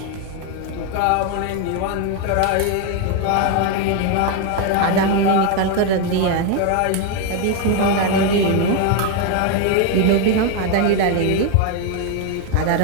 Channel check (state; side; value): different; both; correlation 0.01